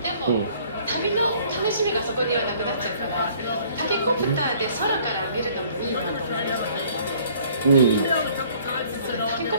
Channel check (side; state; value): both; inverted; correlation -0.57